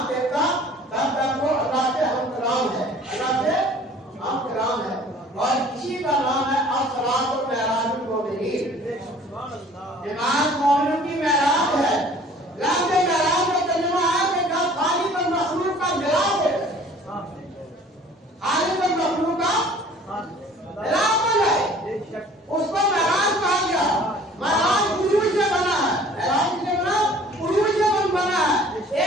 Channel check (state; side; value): normal; both; correlation 0.51